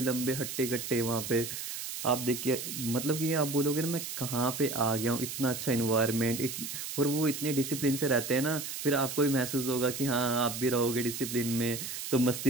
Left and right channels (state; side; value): noise; right; hiss, 6 dB below the sound